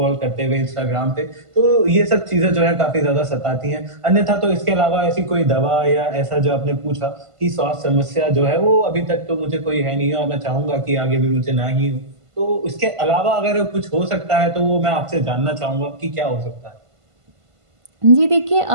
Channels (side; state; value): left; late; 1.5 ms